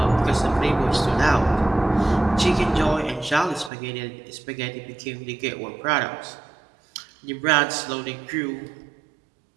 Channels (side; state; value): left; drops out; at 3.7 s